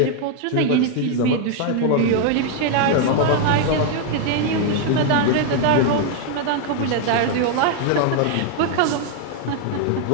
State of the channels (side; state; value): both; different; correlation 0.00